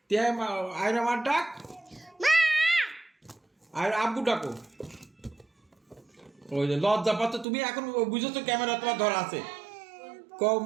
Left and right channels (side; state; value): left; drops out; at 7.5 s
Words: আয়রা মার ডাক, আর আব্বু ডাকো। ওই যে লজ্জা পাচ্ছ তুমি, এখন বুঝেছো ক্যামেরা তোমার ধরা আছে। কও